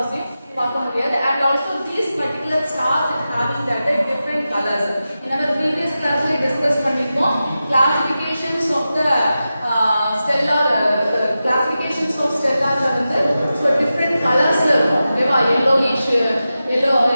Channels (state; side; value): inverted; both; correlation -0.92